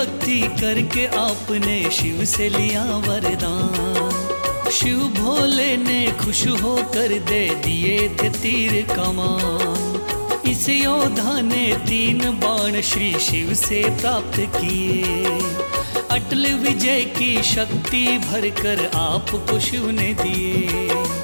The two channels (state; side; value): inverted; both; correlation -1.00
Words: करके आपने शिव से लिया वरदान। शिव भोले ने खुश होकर दे दिए थे तीर कमान। इस योद्धा ने 3 बाण श्री शिव से प्राप्त किए। अटल विजय की शक्ति भरकर आपको शिव ने दिए।